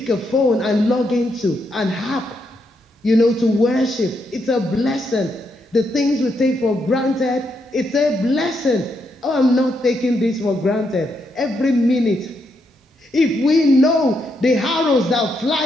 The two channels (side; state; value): both; normal; correlation 0.79